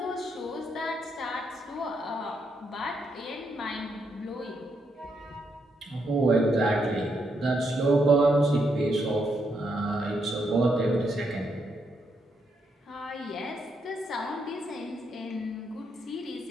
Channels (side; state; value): both; normal; correlation 0.78